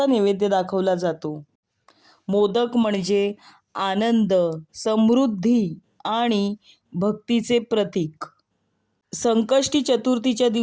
नैवेद्य दाखवला जातो. मोदक म्हणजे आनंद, समृद्धी आणि भक्तीचे प्रतीक. संकष्टी चतुर्थीच्या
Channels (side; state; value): both; identical; correlation 1.00